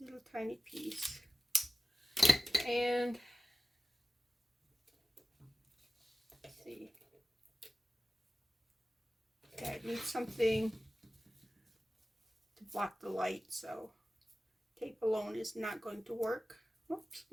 a little tiny piece. And let's see. Okay, I need something to block the light, so tape alone is not going to work. Oops.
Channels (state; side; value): normal; both; correlation 0.95